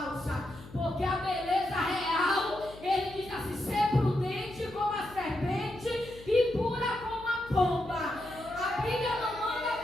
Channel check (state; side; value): noise; left; hum, 18 dB below the sound